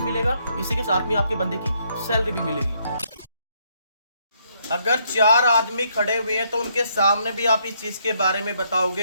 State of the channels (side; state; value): both; inverted; correlation -0.72